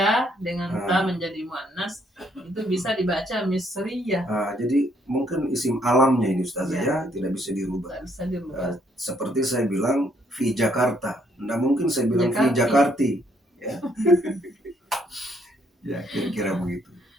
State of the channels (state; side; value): normal; both; correlation 0.69